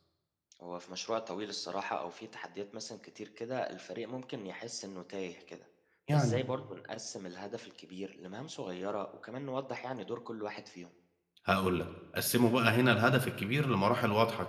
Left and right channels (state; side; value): identical; both; correlation 1.00